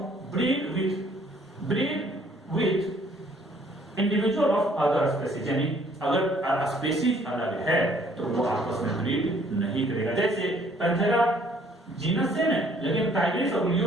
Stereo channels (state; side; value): normal; both; correlation 0.61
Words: breed with individual of other species, यानी अगर स्पेसीज अलग है तो वो आपस में ब्रीड नहीं करेगा। जैसे पैंथेरा जीनस सेम है लेकिन टाइग्रिस और